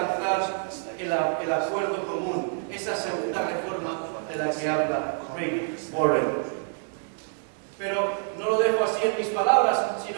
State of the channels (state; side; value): silent; left; 60 dB below the other